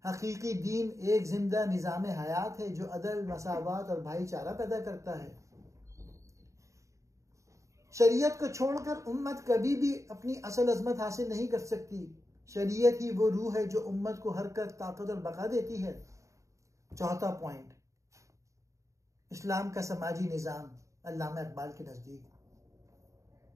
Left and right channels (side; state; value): left; late; 0.15 ms